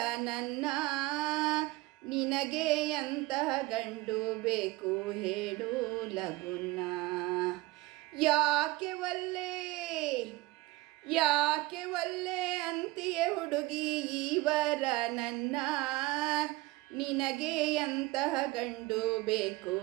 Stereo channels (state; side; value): quieter; left; 20.7 dB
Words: ನನ್ನ, ನಿನಗೆ ಎಂತಹ ಗಂಡು ಬೇಕು ಹೇಳು ಲಗುನ. ಯಾಕೆ ಒಲ್ಲೆ ಯಾಕೆ ಒಲ್ಲೆ ಅಂತೀಯೇ ಹುಡುಗಿ ಇವರ ನನ್ನ, ನಿನಗೆ ಎಂತಹ ಗಂಡು ಬೇಕು